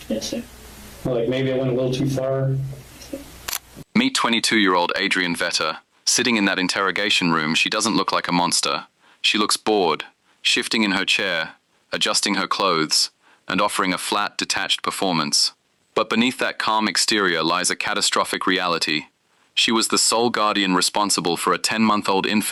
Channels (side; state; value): both; identical; correlation 1.00